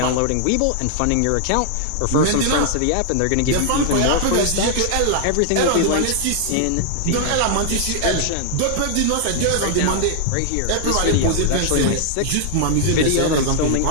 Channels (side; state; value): both; different; correlation 0.00